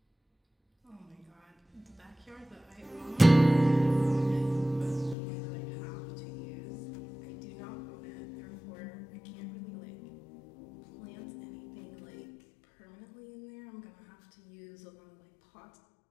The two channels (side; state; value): right; drops out; at 5.2 s